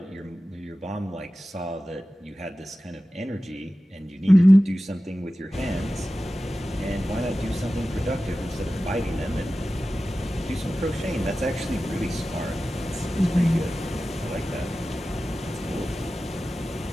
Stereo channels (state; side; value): normal; both; correlation 0.95